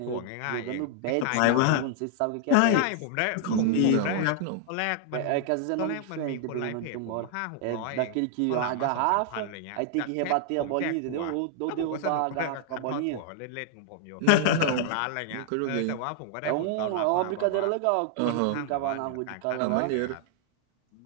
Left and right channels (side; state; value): both; different; correlation 0.00